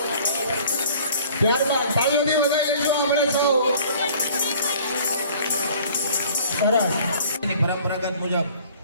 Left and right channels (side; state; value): both; inverted; correlation -0.51